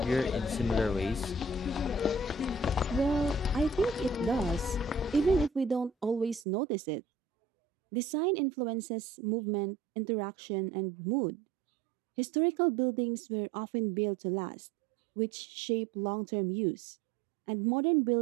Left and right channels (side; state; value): left; drops out; at 6.5 s